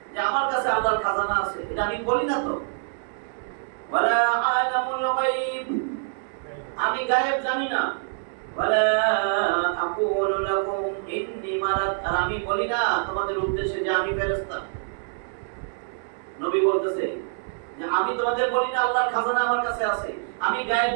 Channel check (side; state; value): left; silent; digital silence